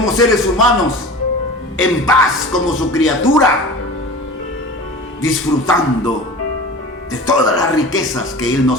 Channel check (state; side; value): normal; both; correlation 0.36